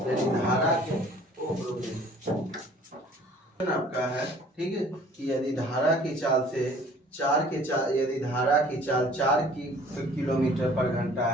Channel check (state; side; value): normal; both; correlation 0.52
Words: धारा के आपका है, ठीक है, कि यदि धारा की चाल से यदि धारा की चाल 4 किलोमीटर पर घंटा